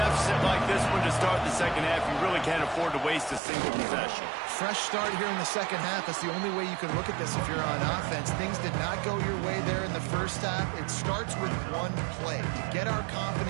like this one to start the second half, you really can't afford to waste a single possession. Fresh start here in the second half. That's the only way you can look at this if you're on offense. Things did not go your way there in the first half. It starts with one play. To get our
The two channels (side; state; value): left; drops out; at 3.4 s